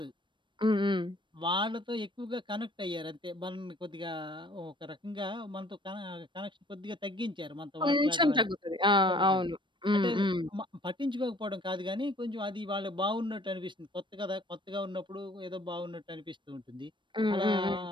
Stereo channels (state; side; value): late; left; 0.23 ms